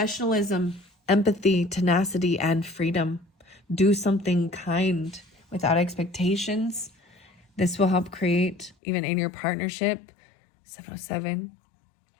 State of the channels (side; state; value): right; drops out; at 8.8 s